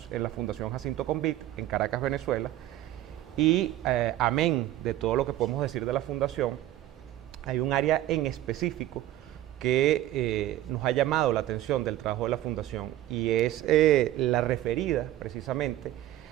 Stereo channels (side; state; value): left; quieter; 14.1 dB